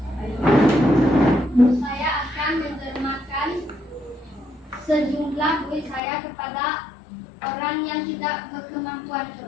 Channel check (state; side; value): drops out; right; at 6.0 s